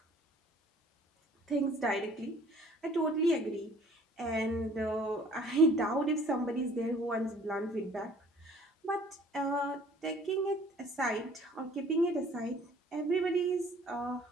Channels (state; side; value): normal; both; correlation 0.54